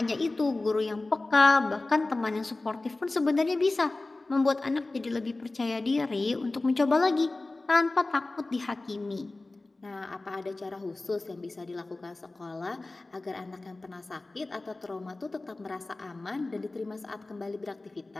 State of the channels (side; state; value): right; quieter; 3.1 dB